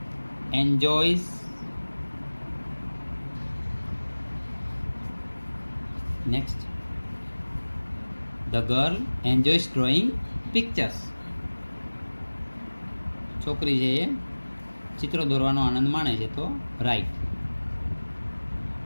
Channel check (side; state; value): both; inverted; correlation -1.00